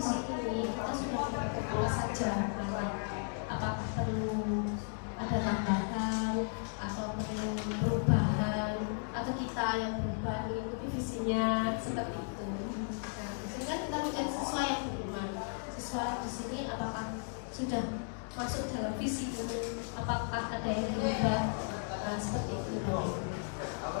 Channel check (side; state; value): right; silent; 54 dB below the other